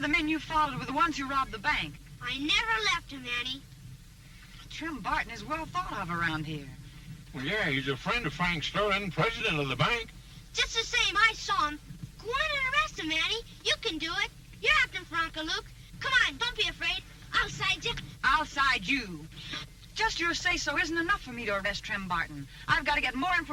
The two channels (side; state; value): both; identical; correlation 1.00